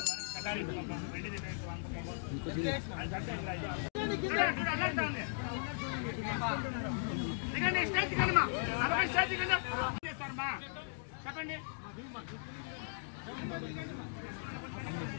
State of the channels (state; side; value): silent; right; digital silence